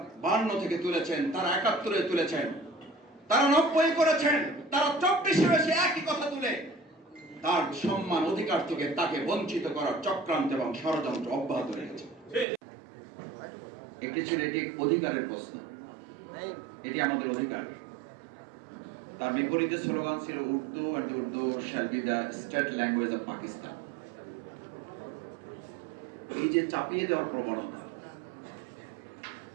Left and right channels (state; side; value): drops out; left; at 12.5 s